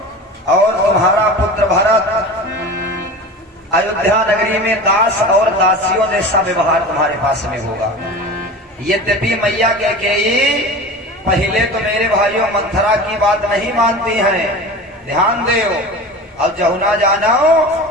तुम्हारा पुत्र भरत अयोध्या नगरी में दास और दासियों जैसा व्यवहार तुम्हारे पास में होगा। यद्यपि मैया कैकेयी पहले तो मेरे भाइयों मंथरा की बात नहीं मानती हैं, ध्यान दो। अब जहुना जानो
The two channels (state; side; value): normal; both; correlation 0.33